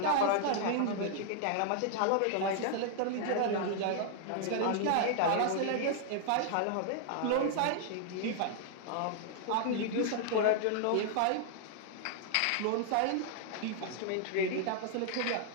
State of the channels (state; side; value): different; both; correlation 0.00